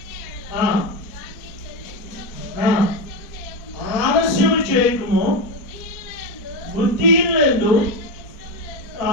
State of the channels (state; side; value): late; right; 4.2 ms